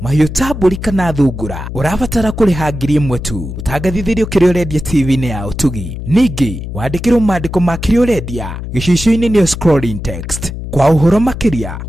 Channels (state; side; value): noise; left; hum, 8 dB below the sound